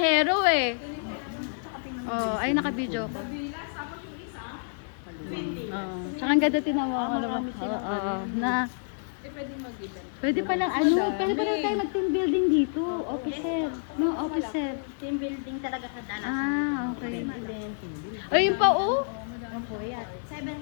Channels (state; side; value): silent; right; 59 dB below the other